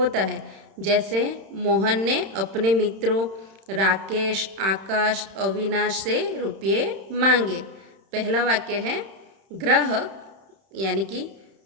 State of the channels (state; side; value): late; left; 31 ms